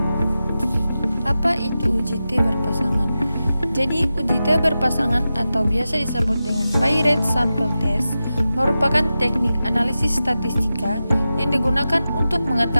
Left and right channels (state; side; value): inverted; both; correlation -0.93